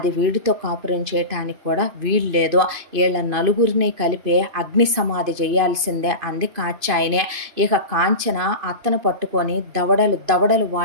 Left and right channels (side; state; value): left; late; 2.5 ms